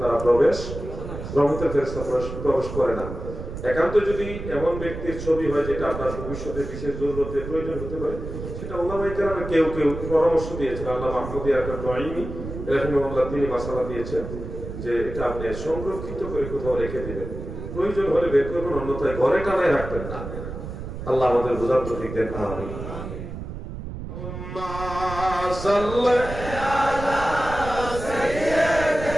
রহমতের ফেরেশতা প্রবেশ করে না। একান্ত যদি এমন ব্যক্তির ছবি হয় যেটা আপনার ভবিষ্যতে বিশেষ জরুরতে প্রয়োজন হতে পারে, সেটা ওলামায়ে কেরামে কেউ পরামর্শ দিয়েছেন। আল্লামা মাহমুদ নঈমি রাহিমাহুল্লাহ তিনি মাসালা দিয়েছেন যে এটা আপনি সংরক্ষিত করে কোথাও রেখে দিবেন, প্রয়োজন হলে বের করবেন, অন্যথায় ঘরে টানায় রাখবেন না। আল্লাহ আমাদের বোঝার তৌফিক দেন, আমিন।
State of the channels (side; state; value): right; noise; rumble, 8 dB below the sound